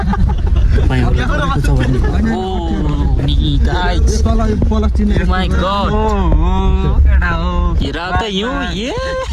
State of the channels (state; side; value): identical; both; correlation 1.00